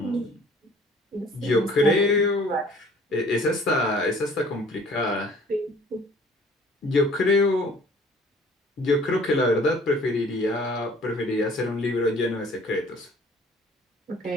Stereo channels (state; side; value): normal; both; correlation 0.53